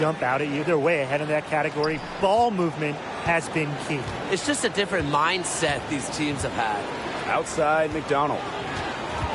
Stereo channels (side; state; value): both; identical; correlation 1.00